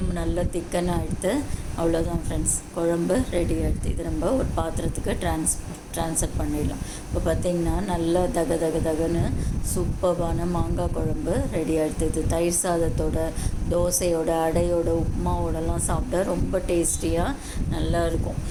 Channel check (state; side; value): identical; both; correlation 1.00